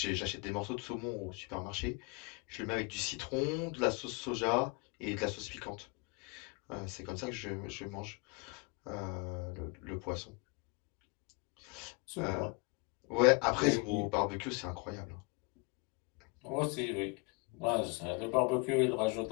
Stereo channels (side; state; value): right; quieter; 29.8 dB